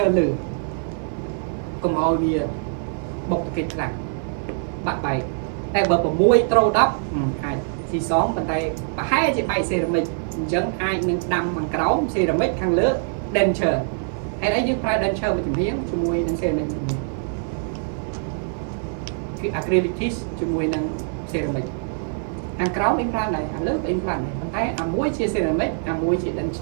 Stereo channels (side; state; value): left; silent; digital silence